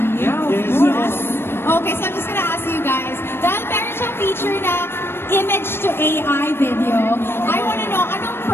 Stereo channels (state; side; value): late; right; 0.11 ms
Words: Yeah, Yes, of course. Okay, so I'm just gonna ask you guys, dahil meron siyang feature na image to AI video, I wanna know, anong